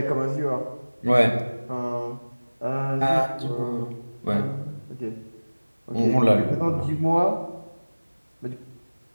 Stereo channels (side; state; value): both; inverted; correlation -1.00